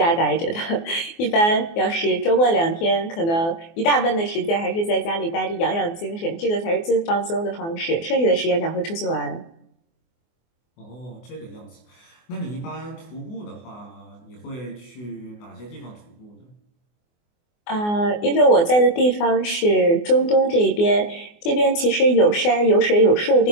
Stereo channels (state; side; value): late; right; 24 ms